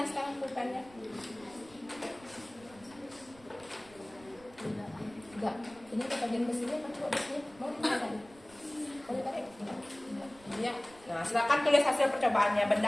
sekarang, pulpennya. Enggak. Ini kita bagian besinya kan coba besinya. Mau ditarik? Mau ditarik? Iya. Nah, silakan tulis hasil percobaannya.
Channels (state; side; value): noise; right; rumble, 24 dB below the sound